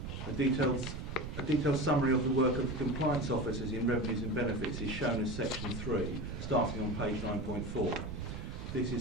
A detailed summary of the work of the compliance officers in revenues and benefits is shown as section 3, starting on page 9.4. This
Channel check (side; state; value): right; noise; rumble, 7 dB below the sound